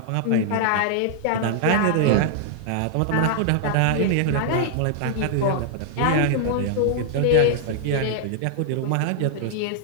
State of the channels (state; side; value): different; both; correlation -0.01